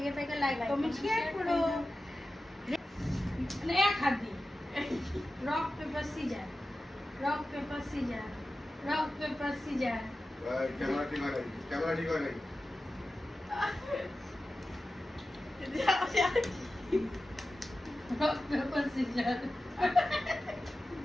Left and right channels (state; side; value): normal; both; correlation 0.94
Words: থাকে লাইক কমেন্ট শেয়ার করো। মানে এক হাত দিয়ে rock paper scissor, rock paper scissor, rock paper scissor. Camera ঠিক হয় নাই, ক্যামেরা ঠিক হয় নাই। Rock paper scissor.